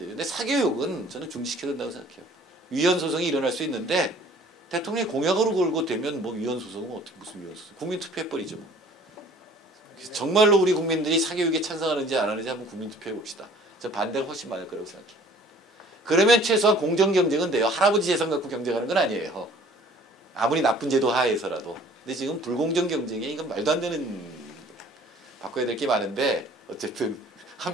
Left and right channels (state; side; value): normal; both; correlation 0.52